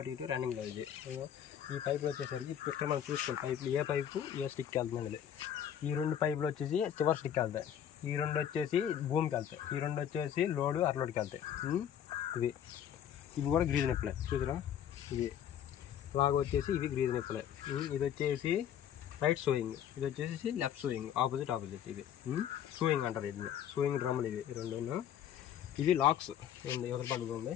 ఇటు రన్నింగ్లో. ఇది ఈ పైపులు వచ్చేసరికి ఇక్కడ మనం చూసుకోవాలి పైపులు ఏ పైపు ఏ స్టిక్ వెళ్తుంది అనేది. ఈ 2 పైపులు వచ్చేసి చివరి స్టిక్ వెళ్తాయి, ఈ 2 వచ్చేసి భూమికి వెళ్తాయి, ఈ 2 వచ్చేసి లోడు అరలోడ్కి వెళ్తాయి. ఇవి కూడా గ్రీజ్ నిప్పులే చూసారా, ఇవి లాగా వచ్చేసి ఇవి గ్రీజ్ నిప్పులే. ఇది వచ్చేసి రైట్ సోయింగ్, ఇది వచ్చేసి లెఫ్ట్ సోయింగ్, ఆపోజిట్. ఇది సోయింగ్ అంటారు, ఇది సోయింగ్ డ్రమ్ములు ఇవి 2. ఇవి లాక్స్ ఎవరి పక్కన ఉంది,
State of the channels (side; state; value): right; quieter; 9.6 dB